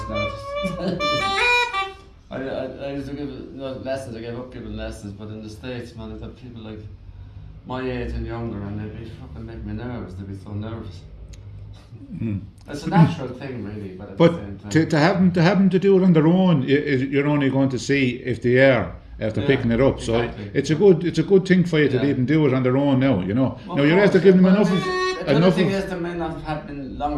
now. I used to give lessons. I gave up giving lessons, but in the States, man, I've got people like my age and younger, and they'd be fucking make me nervous. They'd be so nervous. It's a natural thing, really, but at the same time. To have them to do it on their own, you're only going to see if they are after picking it up. Exactly. So it's a good thing for you to even do it on their own now. You know. Well, now you're after giving them enough. The other thing is they may not have been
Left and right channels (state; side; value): identical; both; correlation 1.00